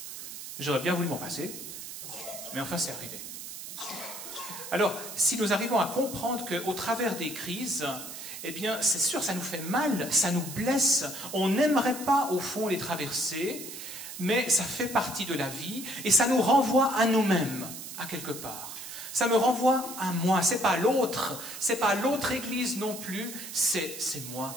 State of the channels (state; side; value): noise; right; hiss, 10 dB below the sound